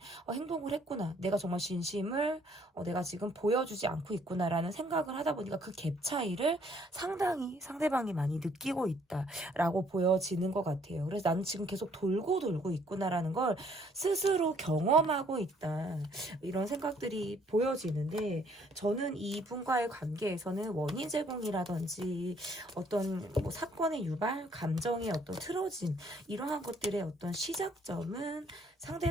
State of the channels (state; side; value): normal; both; correlation 0.64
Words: 행동을 했구나. 내가 정말 진심을 내가 지금 보여주지 않고 있구나라는 생각을 하다 보니까 그 갭 차이를 상당히 상대방이 많이 느끼고 있다라고 보여지는 것 같아요. 그래서 나는 지금 계속 돌고 돌고 있구나라는 걸 스스로 경험하고 있다. 이런 생각들이 보여지는데 저는 이분과의 관계에서는 원인 제공이라든지 어떤 뭐 사건의 유발, 감정의 어떤 틀어짐 이러한 것들의 어떤 시작점은